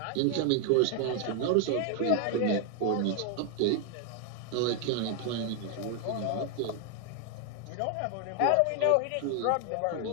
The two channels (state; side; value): different; both; correlation 0.00